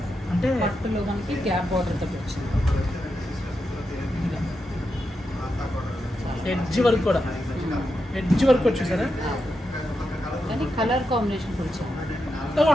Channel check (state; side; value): normal; both; correlation 0.86